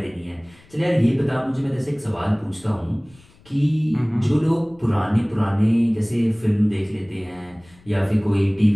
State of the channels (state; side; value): noise; left; rumble, 28 dB below the sound